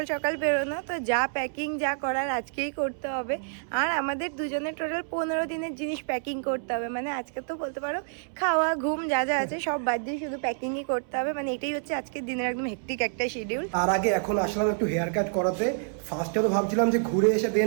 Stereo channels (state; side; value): silent; left; 59 dB below the other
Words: সকাল বেরোনো, তো যা প্যাকিং যা করার আজকেই করতে হবে। আর আমাদের দুজনের টোটাল 15 দিনের জিনিস প্যাকিং করতে হবে, মানে আজকে তো বলতে পারো খাওয়া ঘুম যা যা আছে সব বাদ দিয়ে শুধু প্যাকিংই করতে হবে। মানে এটাই হচ্ছে আজকের দিনের একদম হেক্টিক একটা শিডিউল। তার আগে এখন আসলাম একটু হেয়ার কাট করাতে। ফার্স্টে তো ভাবছিলাম যে ঘুরে এসে